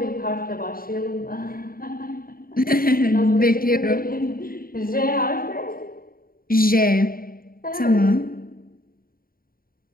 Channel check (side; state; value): right; late; 0.42 ms